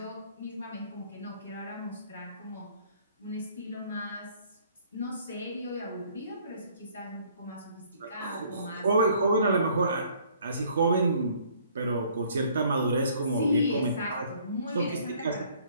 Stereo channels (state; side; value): inverted; both; correlation -0.59